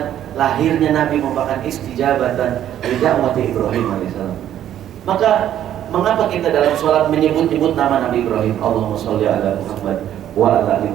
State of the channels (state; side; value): quieter; left; 11.2 dB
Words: lahirnya Nabi merupakan istijabatan li da'wati Ibrahim alaihissalam. Maka mengapa kita dalam sholat menyebut-nyebut nama Nabi Ibrahim? Allahumma sholli ala Muhammad wa ala ali